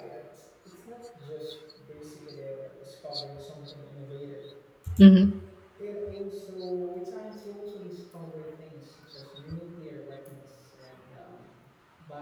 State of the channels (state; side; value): identical; both; correlation 1.00